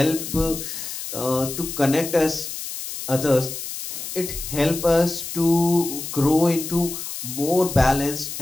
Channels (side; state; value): left; noise; hiss, 8 dB below the sound